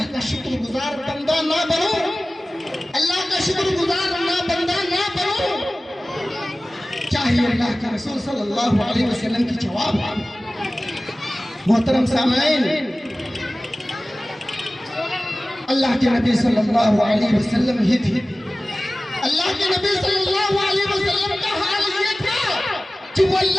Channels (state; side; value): normal; both; correlation 0.97